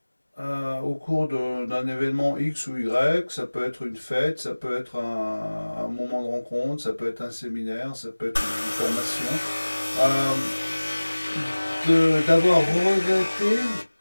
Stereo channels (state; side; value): inverted; both; correlation -1.00